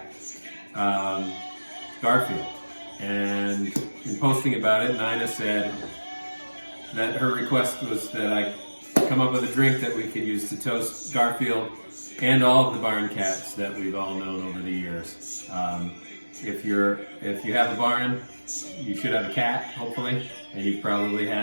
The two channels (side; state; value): both; inverted; correlation -1.00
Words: Garfield. And in posting about it, Nina said that her request was that I come up with a drink that we could use to toast Garfield and all of the barn cats that we've all known over the years. If you have a barn, you should have a cat, hopefully, and you've probably